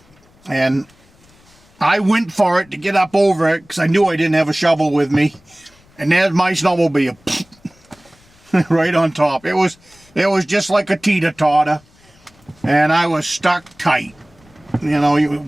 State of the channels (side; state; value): left; noise; rumble, 30 dB below the sound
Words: And I went for it to get up over it because I knew I didn't have a shovel with me. And there's my snowmobile right on top. It was just like a teeter-totter, and I was stuck tight. You know,